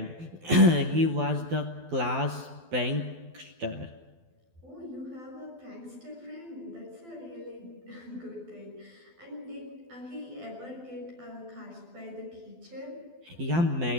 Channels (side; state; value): left; late; 12 ms